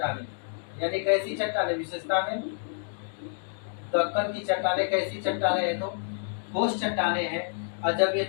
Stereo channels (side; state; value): right; silent; digital silence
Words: यानी कैसी चट्टानें, विशेषता में दक्कन की चट्टानें कैसी चट्टानें हैं, तो ठोस चट्टानें हैं। और जब ये